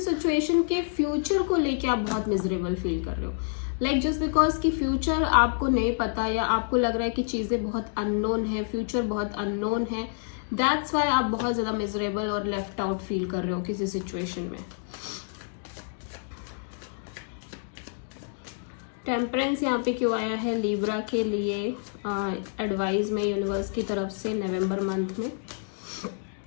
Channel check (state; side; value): silent; right; digital silence